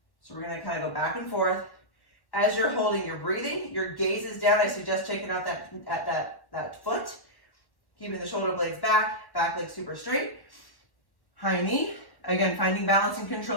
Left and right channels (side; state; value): right; late; 1.1 ms